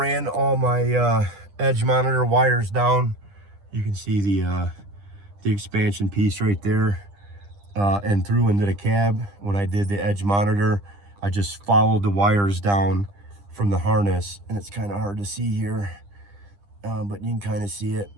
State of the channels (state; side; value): late; left; 10 ms